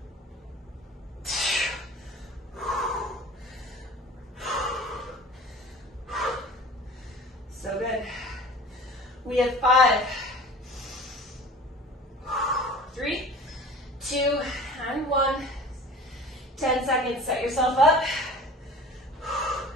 So good. We have 5, 3, 2, and 1. 10 seconds. Set yourself up.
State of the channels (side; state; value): both; normal; correlation 0.42